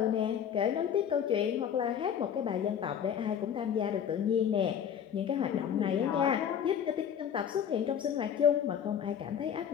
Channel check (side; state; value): right; quieter; 8.6 dB